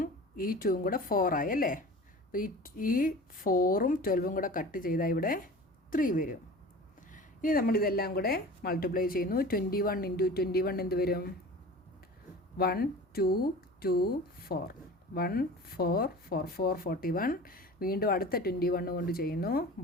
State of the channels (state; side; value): normal; both; correlation 0.38